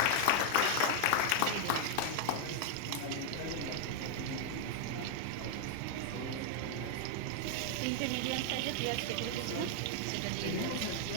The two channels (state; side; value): different; both; correlation 0.00